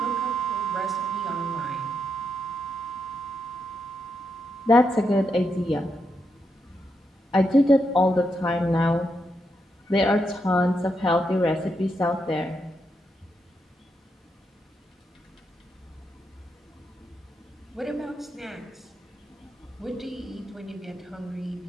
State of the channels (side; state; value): both; normal; correlation 0.82